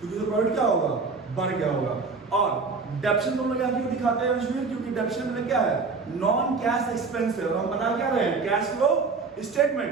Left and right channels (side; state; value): left; quieter; 4.5 dB